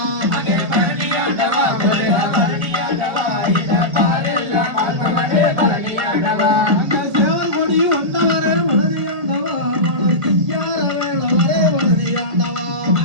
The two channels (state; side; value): late; left; 1.7 ms